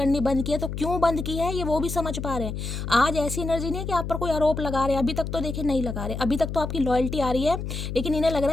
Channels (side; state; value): left; noise; hum, 5 dB below the sound